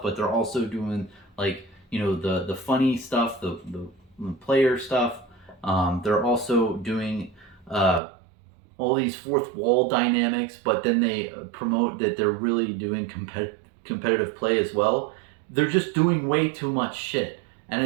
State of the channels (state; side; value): drops out; left; at 8.0 s